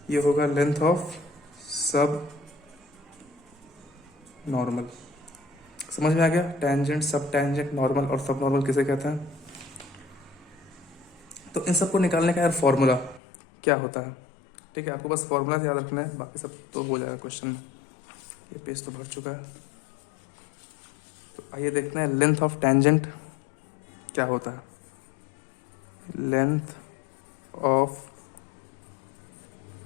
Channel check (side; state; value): right; drops out; at 13.2 s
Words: ये होगा लेंथ ऑफ सब नॉर्मल। समझ में आ गया, टेंजेंट सब टेंजेंट नॉर्मल और सब नॉर्मल किसे कहते हैं। तो इन सबको निकालने का यार फॉर्मूला क्या होता है, ठीक है। आपको बस फॉर्मूला याद रखना है, बाकी सब तो हो जाएगा क्वेश्चन में। ये पेज तो भर चुका है, तो आइए देखते हैं लेंथ ऑफ टेंजेंट क्या होता है। लेंथ ऑफ